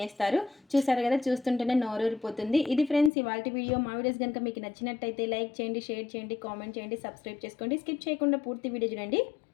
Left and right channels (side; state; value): right; drops out; at 3.1 s